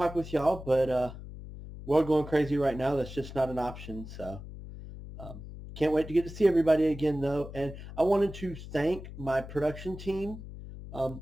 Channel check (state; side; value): noise; left; hum, 12 dB below the sound